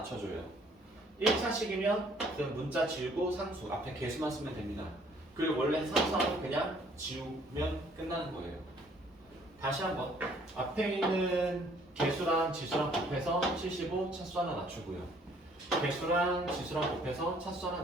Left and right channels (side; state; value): both; normal; correlation 0.61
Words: 1차식이면 그냥 문자 지우고 상수 앞에 개수만 쓰면 됩니다. 그리고 원래 상수하면 그냥 지우면 끝나는 거예요. 다시 한번 앞에 있는 개수랑 지수랑 곱해서 75 차수 하나 낮추고요. 개수랑 지수랑 곱해서 차수 하나